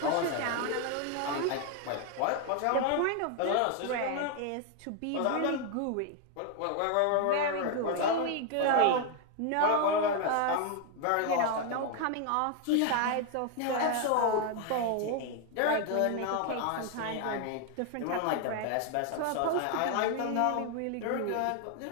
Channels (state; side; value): different; both; correlation 0.00